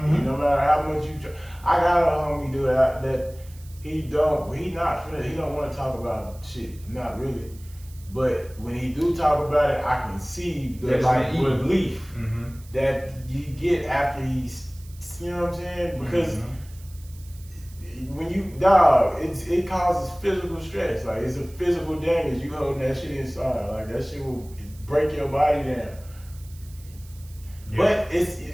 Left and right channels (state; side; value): noise; right; hiss, 24 dB below the sound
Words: No matter how much you try. I got a homie dude that he don't want to talk about shit. Not really. But when he do talk about it, I can see the relief that you get after he's, you know what I'm saying? Because when you it causes physical stress. Like it's a physical damage. You holding that shit inside. Like that shit will break your body down. Yeah. But